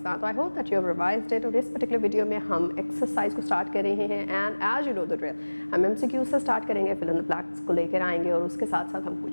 तो I hope that you have revised it. और इस पर्टिकुलर वीडियो में हम एक्सरसाइज को स्टार्ट कर रहे हैं and as you know the drill हम MCQ से स्टार्ट करेंगे, फिल इन द ब्लैंक्स को लेकर आएंगे और उसके साथ साथ हम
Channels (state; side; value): inverted; both; correlation -1.00